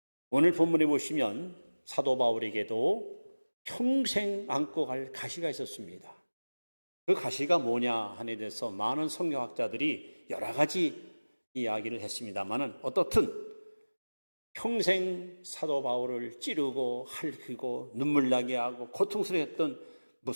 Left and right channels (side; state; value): both; inverted; correlation -1.00